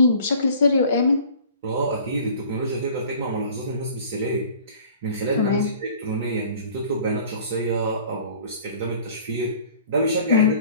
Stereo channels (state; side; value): inverted; both; correlation -0.48